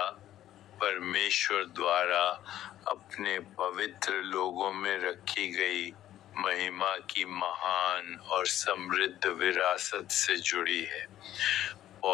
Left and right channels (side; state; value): right; quieter; 12.6 dB